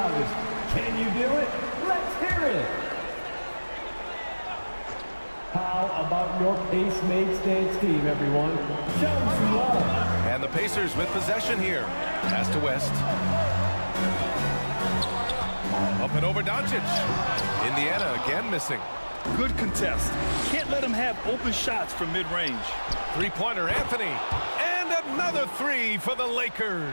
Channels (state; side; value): inverted; both; correlation -1.00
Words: Can you do it? Let's hear it! How about your Pace-Mates dance team, everyone? Show them some love. And the Pacers with possession here. Pass to West. Up and over Doncic. Indiana again missing. Good contest. Can't let him have open shots from mid-range. Three-pointer Anthony. And another three for the